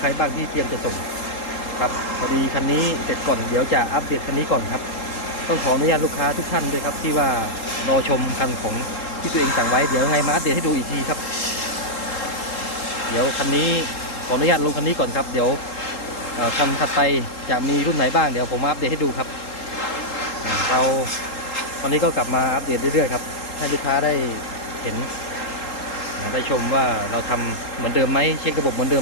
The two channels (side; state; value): right; late; 3.8 ms